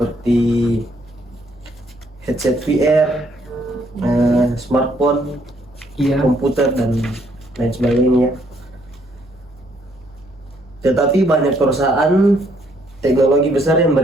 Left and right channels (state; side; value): normal; both; correlation 0.69